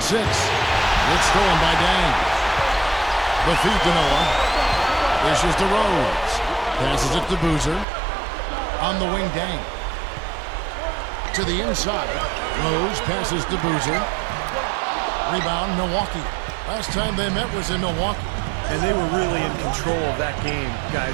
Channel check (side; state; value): left; drops out; at 7.9 s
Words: 6. It's stolen by Dang. The feed to Noah. Dishes to Rose. Passes it to Boozer. On the wing, Dang. To the inside. Rose passes to Boozer. Rebound, Milwaukee. Last time they met was in Milwaukee. And they were really in control of that game,